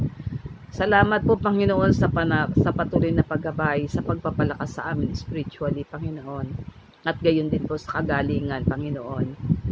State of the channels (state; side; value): identical; both; correlation 1.00